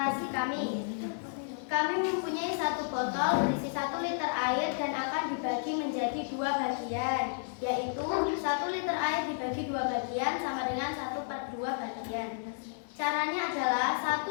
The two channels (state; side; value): silent; right; 56 dB below the other